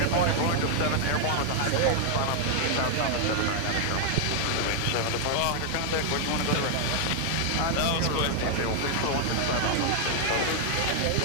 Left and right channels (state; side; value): different; both; correlation 0.00